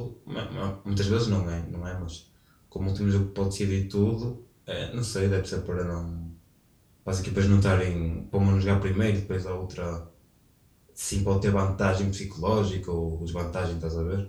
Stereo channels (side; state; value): both; identical; correlation 1.00